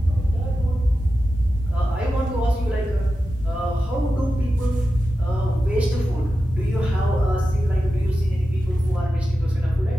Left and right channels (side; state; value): both; normal; correlation 0.92